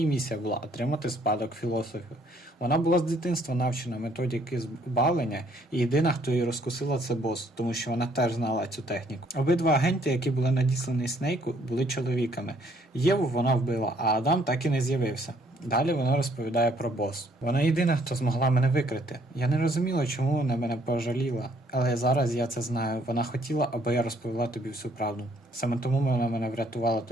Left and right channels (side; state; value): both; normal; correlation 0.65